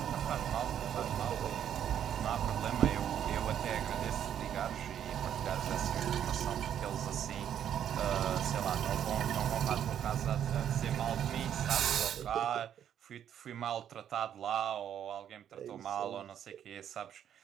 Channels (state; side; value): quieter; left; 9.7 dB